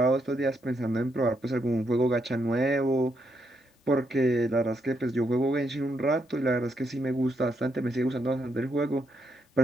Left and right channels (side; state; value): both; normal; correlation 0.78